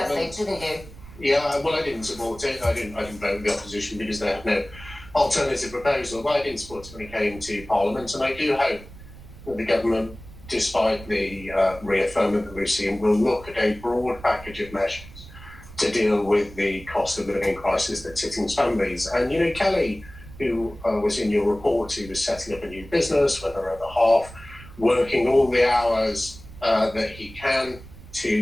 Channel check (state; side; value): noise; right; rumble, 18 dB below the sound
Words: think, didn't you? Yeah, well, I didn't support it. I didn't vote with the opposition because they had no alternative proposal. But I didn't support it when it came to Parliament, and I do hope that the government, despite the reaffirmment that we've seen, will look at a broad package of measures to deal with the cost of living crisis that's hitting families. And, you know, Kelly, who was in your report, who was setting up a new business, whether at the half, working all the hours that he can